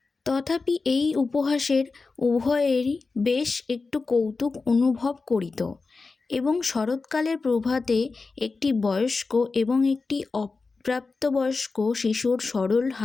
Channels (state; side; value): quieter; right; 4.1 dB